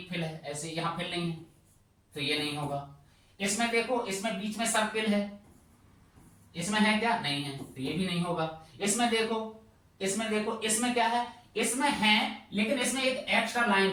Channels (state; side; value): identical; both; correlation 1.00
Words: फिल है, ऐसे यहाँ फिल नहीं है, तो ये नहीं होगा। इसमें देखो, इसमें बीच में सर्किल है, इसमें है क्या, नहीं है, तो ये भी नहीं होगा। इसमें देखो, इसमें क्या है, इसमें है, लेकिन इसमें एक एक्स्ट्रा लाइन